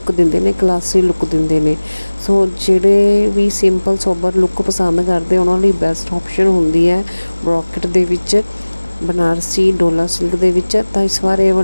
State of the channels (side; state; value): both; inverted; correlation -1.00